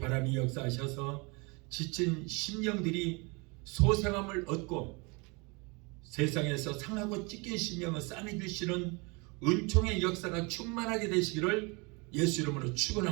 역사하셔서 지친 심령들이 소생함을 얻고 세상에서 상하고 찢긴 심령을 싸매주시는 은총의 역사가 충만하게 되시기를 예수 이름으로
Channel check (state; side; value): quieter; left; 29.1 dB